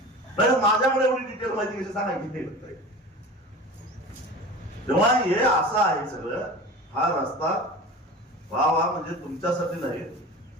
माझ्याकडे एवढी डिटेल माहिती कशी सांगायची? तेव्हा हे असं आहे सगळं. हा रस्ता वा म्हणजे तुमच्यासाठी नाही,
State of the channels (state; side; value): normal; both; correlation 0.35